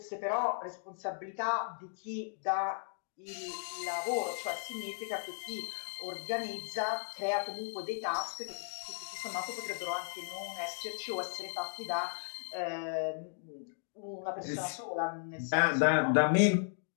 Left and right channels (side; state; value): right; silent; digital silence